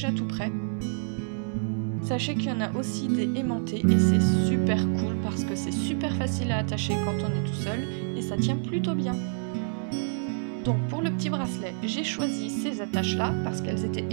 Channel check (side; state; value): left; silent; digital silence